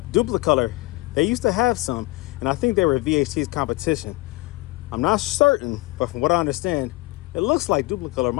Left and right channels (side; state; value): right; quieter; 22.1 dB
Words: Duplicolor, they used to have some, and I think they were VHT's competition. I'm not certain, but from what I understand, it looks like Duplicolor